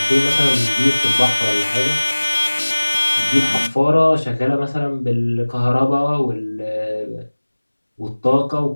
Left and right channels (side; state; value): both; inverted; correlation -1.00